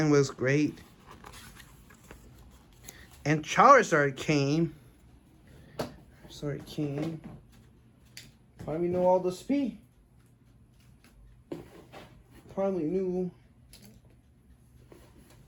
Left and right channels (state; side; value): identical; both; correlation 1.00